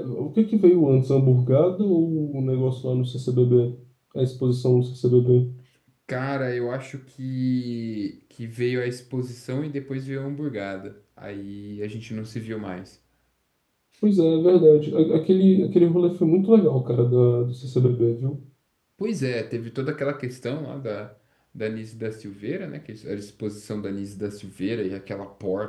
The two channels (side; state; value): both; identical; correlation 1.00